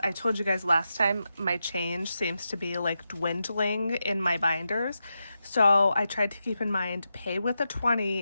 I told you guys last time my change seems to be like dwindling in my binders. So I tried to keep in mind, pay with a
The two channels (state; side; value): inverted; both; correlation -0.88